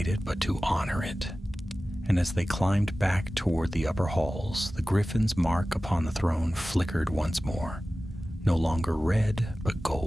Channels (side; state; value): both; normal; correlation 0.96